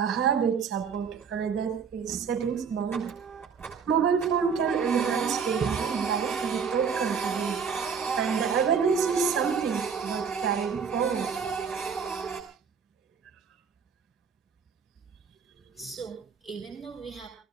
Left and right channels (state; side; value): quieter; left; 6.3 dB